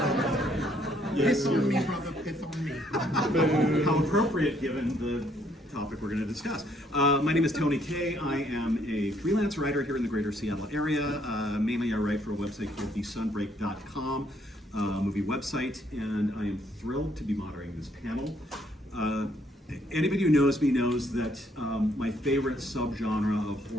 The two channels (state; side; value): normal; both; correlation 0.68